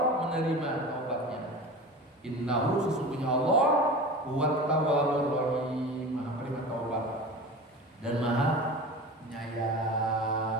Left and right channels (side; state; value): both; normal; correlation 0.33